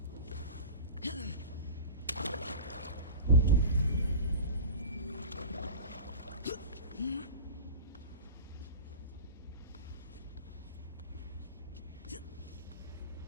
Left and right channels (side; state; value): both; inverted; correlation -0.33